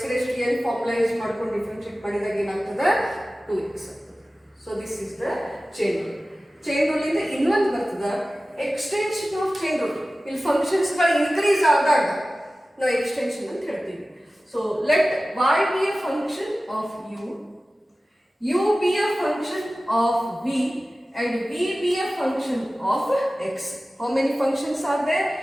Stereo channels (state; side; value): normal; both; correlation 0.96